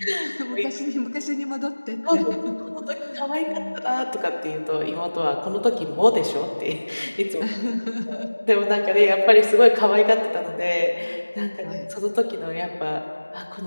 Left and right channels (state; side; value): inverted; both; correlation -1.00